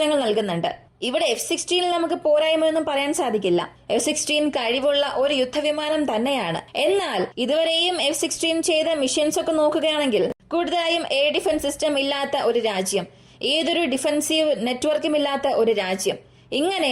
നൽകുന്നുണ്ട്. ഇവിടെ F-16 നമുക്ക് പോരായ്മയൊന്നും പറയാൻ സാധിക്കില്ല. F-16 കഴിവുള്ള ഒരു യുദ്ധവിമാനം തന്നെയാണ്. എന്നാൽ ഇതുവരെയും F-16 ചെയ്ത മിഷൻസ് ഒക്കെ നോക്കുകയാണെങ്കിൽ കൂടുതലായും എയർ ഡിഫൻസ് സിസ്റ്റം ഇല്ലാത്ത ഒരു രാജ്യം, ഏതൊരു ഡിഫൻസീവ് നെറ്റ്വർക്കും ഇല്ലാത്ത ഒരു രാജ്യം, ഇങ്ങനെ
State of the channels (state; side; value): identical; both; correlation 1.00